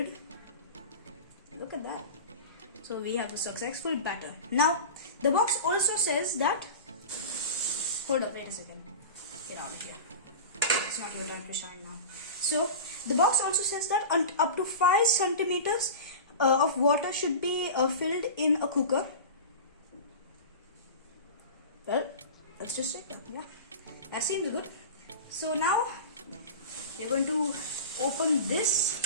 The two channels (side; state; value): both; inverted; correlation -0.31